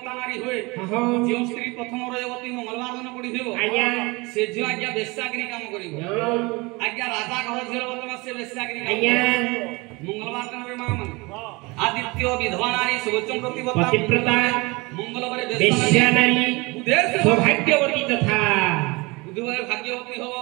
नारी होए जो स्त्री प्रथम रविवार मंगलवार दिन पड़िथिबो से जो आज्ञा वेश्यागिरी काम करिवो आज्ञा राजा घर झेल बतमा से वेश्यागिरी मंगलवार दिन रे मां माने आदित्य विधवा नारी सुवचन प्रतिव्रता मंगलवार वेश्या नारी सौभाग्यवती तथा बुधवार भाग्यवती हो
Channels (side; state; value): left; quieter; 25.3 dB